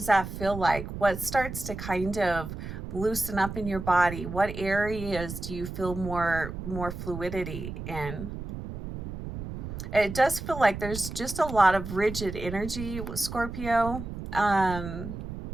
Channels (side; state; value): right; noise; rumble, 8 dB below the sound